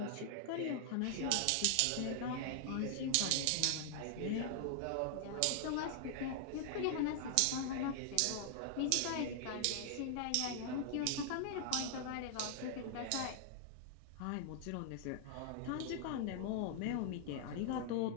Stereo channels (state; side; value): different; both; correlation -0.01